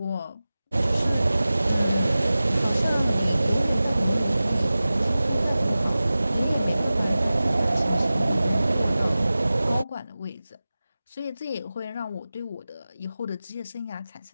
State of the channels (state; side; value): inverted; both; correlation -0.96